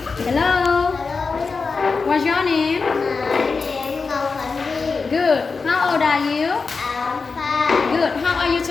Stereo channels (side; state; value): right; quieter; 4.6 dB